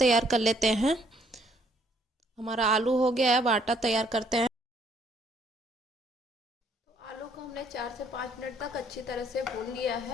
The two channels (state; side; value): normal; both; correlation 0.65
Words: कर लेते हैं। हमारा आलू हो गया है, अब आटा तैयार करते हैं। तो आलू को हमने 4 से 5 मिनट तक अच्छी तरह से भून लिया